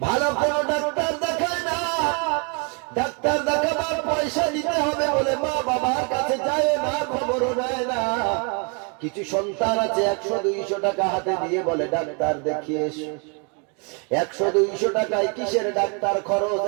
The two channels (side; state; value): left; quieter; 36.1 dB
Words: ভালো কোনো ডাক্তার দেখায় না। ডাক্তার দেখাবার পয়সা দিতে হবে বলে মা বাবার কাছে যায় না, খবরও নেয় না। কিছু সন্তান আছে 100-200 টাকা হাতে দিয়ে বলে, ডাক্তার দেখিয়ে এসো। 100-200 টাকায় কিসের ডাক্তার খরচ?